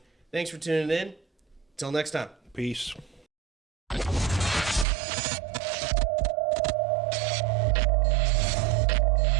Thanks for tuning in. Till next time. Peace.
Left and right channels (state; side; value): drops out; left; at 4.9 s